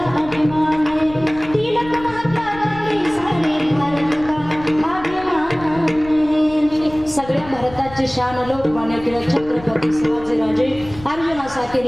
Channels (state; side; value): noise; left; rumble, 17 dB below the sound